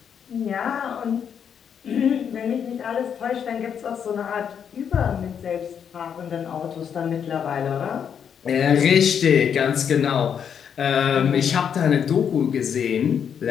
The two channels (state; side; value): quieter; right; 7.8 dB